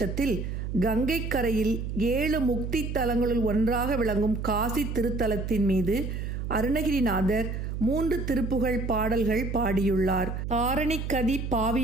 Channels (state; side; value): noise; right; hum, 4 dB below the sound